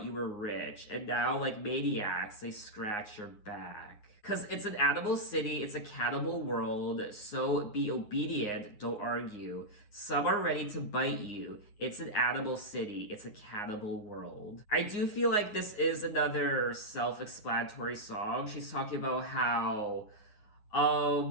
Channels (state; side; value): late; right; 9.6 ms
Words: you were rich, and now, like maniacs, they scratch your back. Because it's an animal city, it's a cannibal world, so be obedient, don't argue. Some are ready to bite you. It's an animal city, it's a cannibal world. I do feel like this is another self explanatory song. She's talking about how